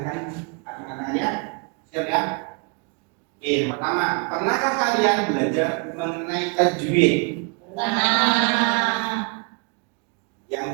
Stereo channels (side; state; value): left; quieter; 34.3 dB